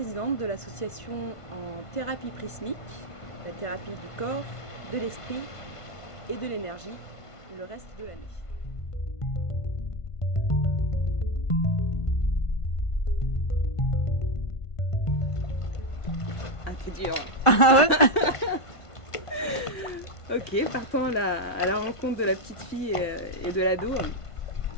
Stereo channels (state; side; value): late; right; 1.5 ms